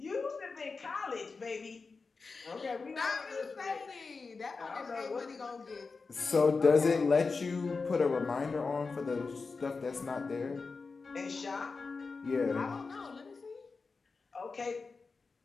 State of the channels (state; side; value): quieter; right; 4.4 dB